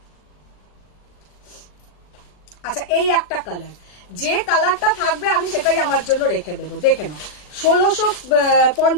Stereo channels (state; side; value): late; right; 40 ms